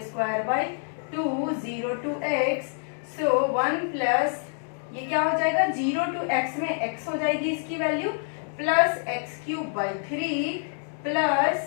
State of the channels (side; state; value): right; silent; 60 dB below the other